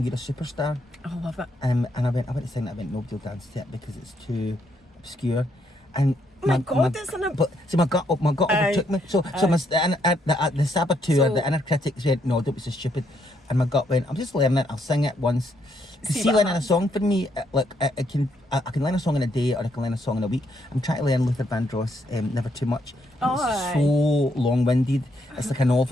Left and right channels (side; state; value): both; normal; correlation 0.74